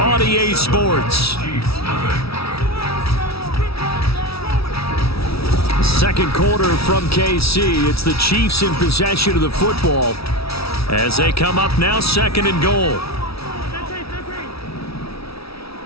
EA Sports. Second quarter from KC. It's the Chiefs in possession of the football as they come up now 2nd and goal.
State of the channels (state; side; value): late; right; 0.76 ms